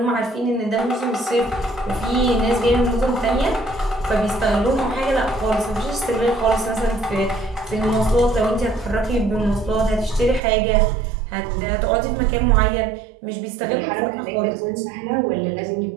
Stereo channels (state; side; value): drops out; left; at 10.4 s